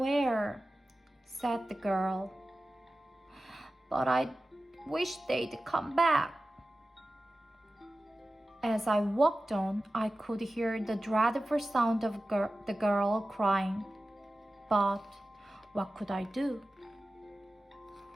said the girl. But I wish they'd come back. As I walked on, I could hear the dreadful sound of the girl crying. But what could I do?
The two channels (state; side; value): normal; both; correlation 0.95